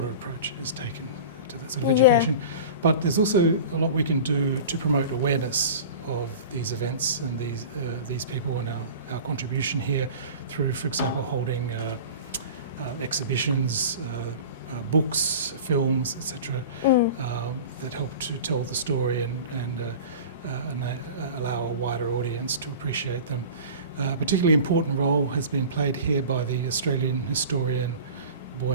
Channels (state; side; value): inverted; both; correlation -0.36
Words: approach is taken to that sort of education. But there's also a lot we can do to promote awareness of these events and these people and our contribution here through, for example, holding exhibitions, books, films, etc., that help to tell the story and allow a wider audience to appreciate them. A particularly important role has been played here by the Australian historian